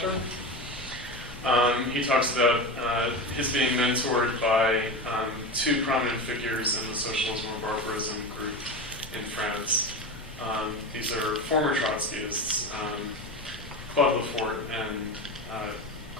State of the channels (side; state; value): both; normal; correlation 0.24